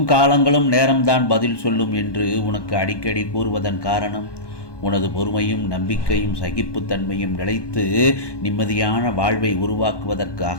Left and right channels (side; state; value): right; late; 1.2 ms